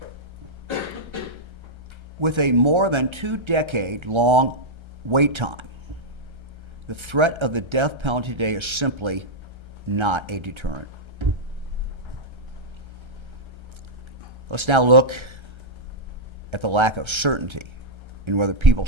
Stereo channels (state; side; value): late; left; 1.3 ms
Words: With a more than 2-decade-long wait time, the threat of the death penalty today is simply not a deterrent. Let's now look at the lack of certainty in whether people